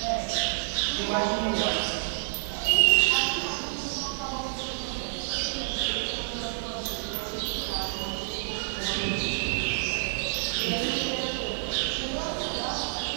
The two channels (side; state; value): left; silent; digital silence